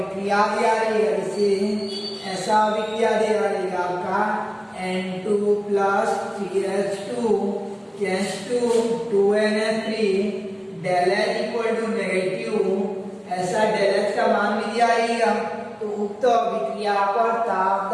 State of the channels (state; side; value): identical; both; correlation 1.00